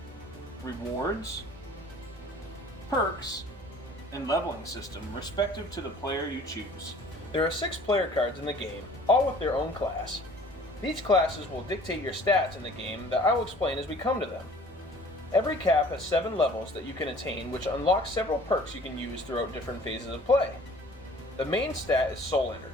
rewards, perks, and leveling system respective to the player you choose. There are 6 player cards in the game, all with their own class. These classes will dictate your stats in the game that I will explain as we come to them. Every cap has 7 levels that you can attain, which unlocks several perks you can use throughout different phases of play. The main stat is soul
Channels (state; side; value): normal; both; correlation 0.51